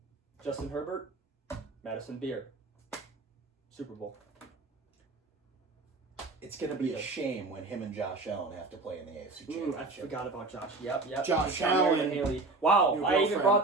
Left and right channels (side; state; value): left; quieter; 3.4 dB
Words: Justin Herbert, Madison Beer. Super Bowl. It's going to be a shame when him and Josh Allen have to play in the AFC Championship. I forgot about Josh. Yep. Josh Allen and Haley. Wow, I even brought